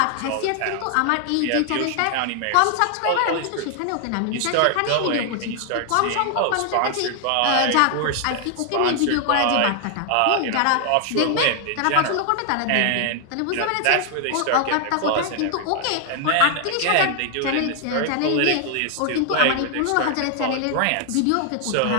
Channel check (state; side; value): different; both; correlation 0.00